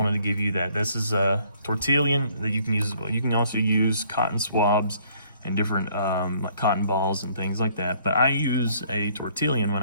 to give you that. This is a tortillon that you can use as well. You can also use cotton swabs and different like cotton balls and things like that, but I use a tortillon when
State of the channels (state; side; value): inverted; both; correlation -0.62